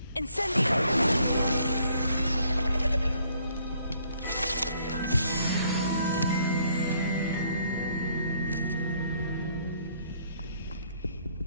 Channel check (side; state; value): both; inverted; correlation -0.66